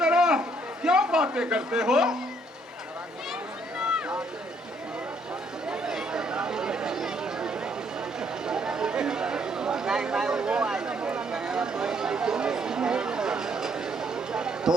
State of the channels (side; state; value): both; normal; correlation 0.69